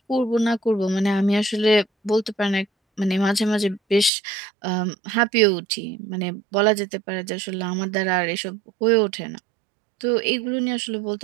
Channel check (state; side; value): drops out; left; at 4.1 s